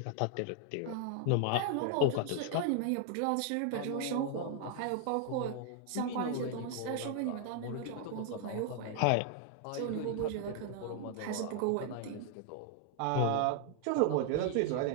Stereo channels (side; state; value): both; different; correlation 0.00